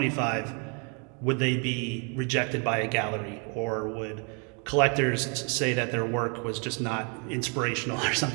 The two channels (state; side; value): quieter; left; 36.2 dB